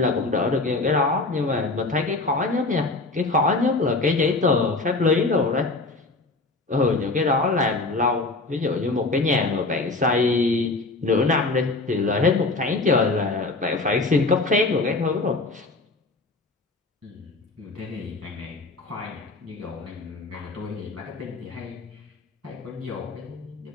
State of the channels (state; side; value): quieter; right; 3.3 dB